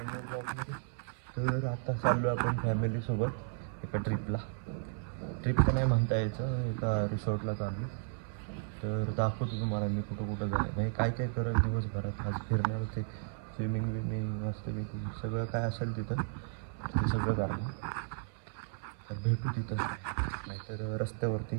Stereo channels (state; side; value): silent; left; 55 dB below the other